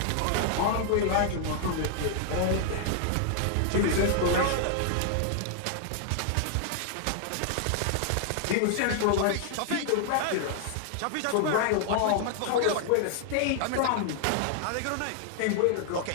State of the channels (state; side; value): different; both; correlation 0.00